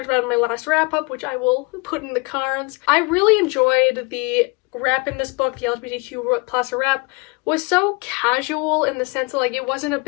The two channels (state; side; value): quieter; right; 29.2 dB